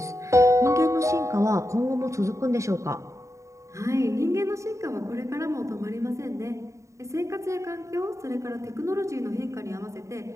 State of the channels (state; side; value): late; left; 0.15 ms